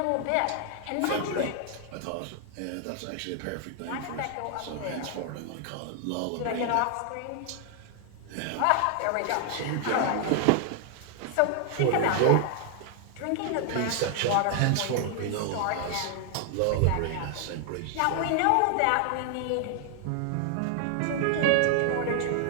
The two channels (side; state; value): both; different; correlation 0.00